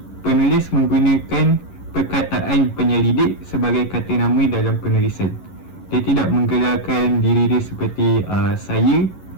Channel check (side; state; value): right; late; 11 ms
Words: penulis menggunakan perkataan penyelidik sebagai kata nama dalam penulisan. Dia tidak menggelarkan diri dia seperti saya